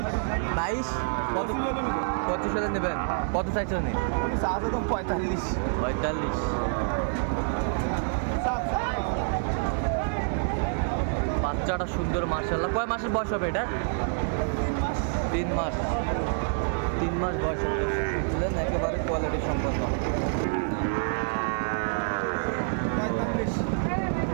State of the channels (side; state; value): left; silent; 60 dB below the other